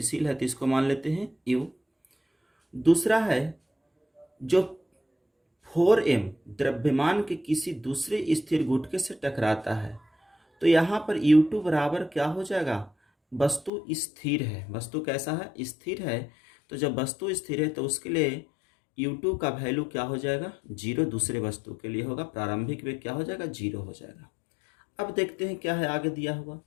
है तो इसको मान लेते हैं u। दूसरा है जो 4m द्रव्यमान के किसी दूसरे स्थिर गुटके से टकराता है, तो यहाँ पर u2 बराबर क्या हो जाएगा, वस्तु स्थिर है। वस्तु कैसा है, स्थिर है। तो जब वस्तु स्थिर है तो उसके लिए u2 का वैल्यू क्या हो जाएगा, 0। दूसरे वस्तु के लिए होगा, प्रारंभिक वेग क्या हो जाएगा, 0 हो जाएगा। अब देखते हैं क्या है आगे दिया हुआ,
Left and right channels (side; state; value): right; drops out; at 13.7 s